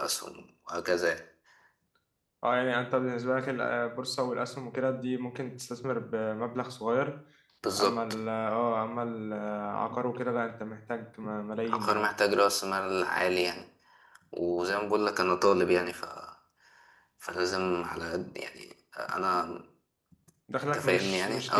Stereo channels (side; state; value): both; identical; correlation 1.00